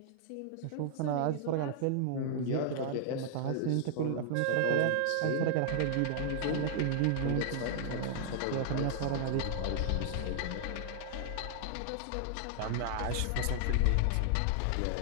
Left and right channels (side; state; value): both; different; correlation -0.01